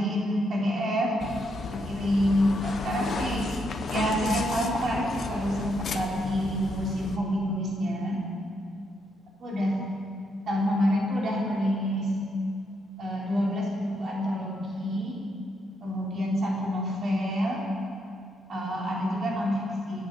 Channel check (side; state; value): both; normal; correlation 0.78